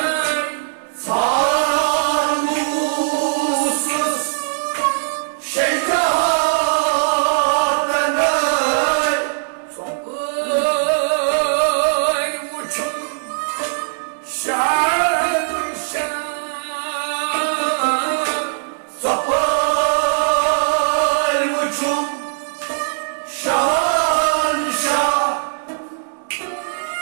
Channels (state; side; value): silent; left; digital silence